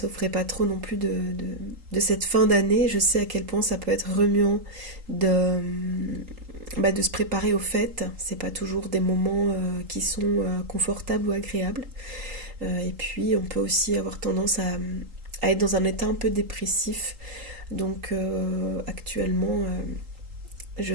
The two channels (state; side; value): late; left; 3.8 ms